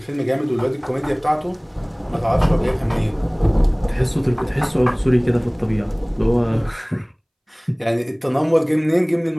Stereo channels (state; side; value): identical; both; correlation 1.00